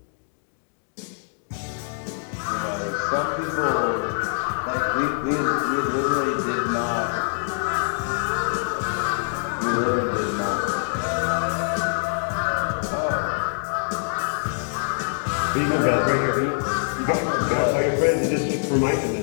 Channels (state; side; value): silent; right; digital silence